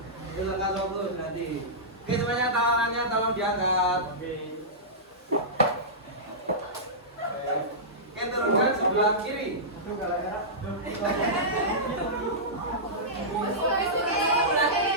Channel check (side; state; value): both; normal; correlation -0.16